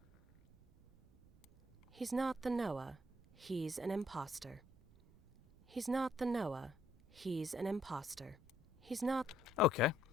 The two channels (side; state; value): right; noise; rumble, 25 dB below the sound